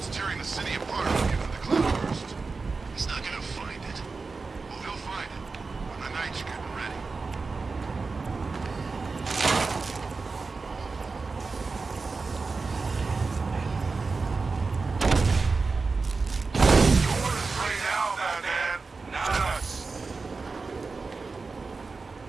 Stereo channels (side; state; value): left; quieter; 4.2 dB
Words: tearing the city apart looking at the cloudburst. He's not gonna find it. Well, he'll find it when the night's getting ready. Yours right now, Batman, not us.